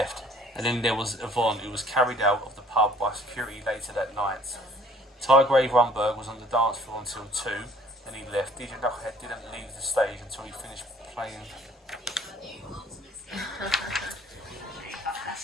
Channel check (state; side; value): normal; both; correlation 0.56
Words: And then there was Yvonne, who was carried out of the pub by security later that night. Tygrave Rumberg was on the dance floor until 2, then he left. DJ Knucklehead didn't leave the stage until he finished playing.